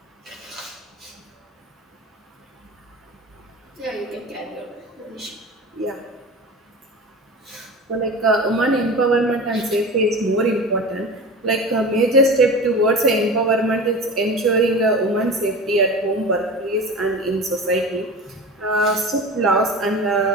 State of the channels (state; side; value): normal; both; correlation 0.32